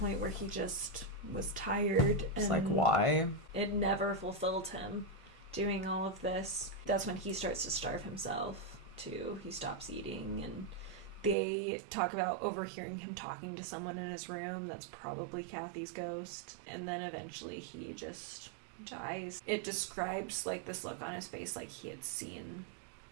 where he just was tired. It's like, why? It never fulfilled him doing all of this. That's when he starts to starve himself too. He stops eating, and they talk about overhearing him talking to someone in his room. That's probably Kathy's ghost. And then eventually he just dies. It describes, like, this look on his face, like he had seen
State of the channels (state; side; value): drops out; left; at 11.4 s